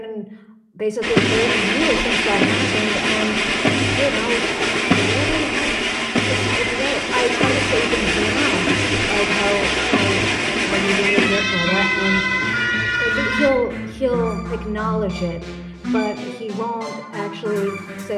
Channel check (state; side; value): identical; both; correlation 1.00